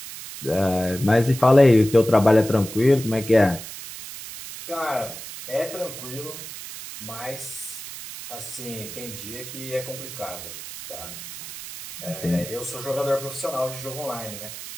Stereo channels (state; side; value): noise; right; hiss, 11 dB below the sound